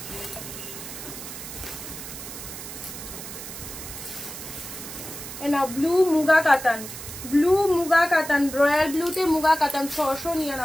না ব্লু মুগা কাতান, ব্লু মুগা কাতান, রয়্যাল ব্লুতে মুগা কাতান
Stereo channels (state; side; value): noise; right; hiss, 10 dB below the sound